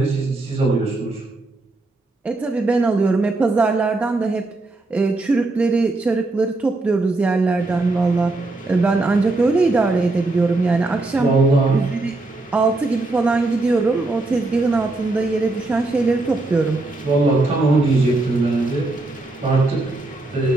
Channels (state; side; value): quieter; left; 3.1 dB